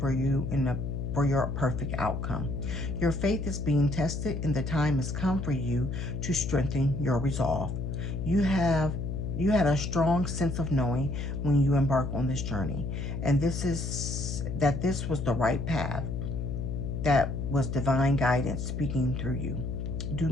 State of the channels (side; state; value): left; noise; hum, 3 dB below the sound